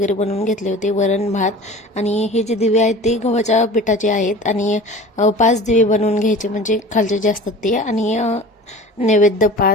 बनवून घेतले होते, वरण भात. आणि हे जे दिवे आहेत ते गव्हाच्या पिठाचे आहेत आणि 5 दिवे बनवून घ्यायचे, म्हणजे खालचे जे असतात ते. आणि नैवेद्य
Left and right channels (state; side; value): normal; both; correlation 0.39